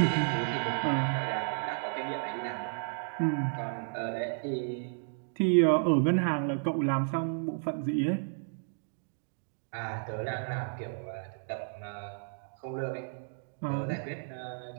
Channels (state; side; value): silent; left; digital silence